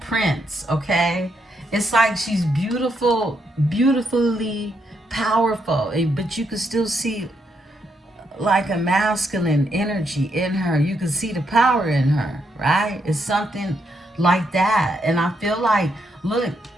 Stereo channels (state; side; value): normal; both; correlation 0.78